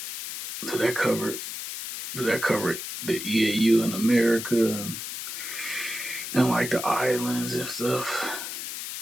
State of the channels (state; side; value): noise; left; hiss, 7 dB below the sound